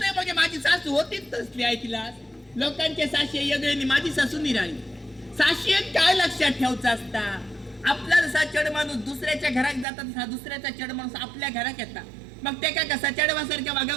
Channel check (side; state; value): left; drops out; at 9.9 s